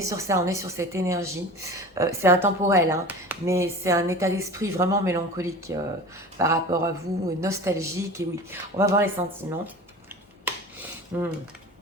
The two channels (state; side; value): normal; both; correlation 0.36